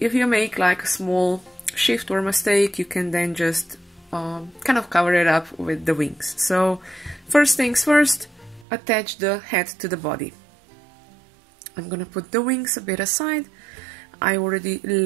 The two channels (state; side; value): drops out; left; at 8.7 s